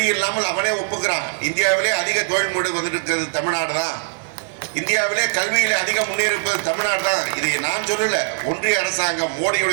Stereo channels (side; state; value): left; silent; 60 dB below the other